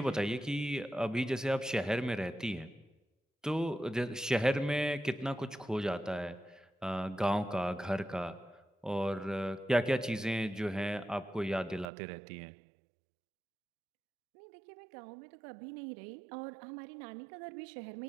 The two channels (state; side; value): drops out; left; at 11.9 s